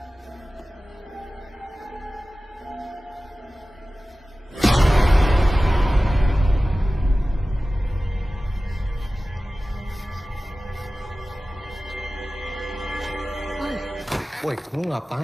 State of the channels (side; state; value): both; normal; correlation 0.96